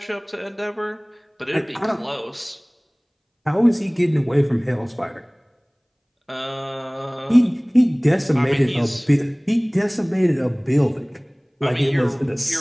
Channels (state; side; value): identical; both; correlation 1.00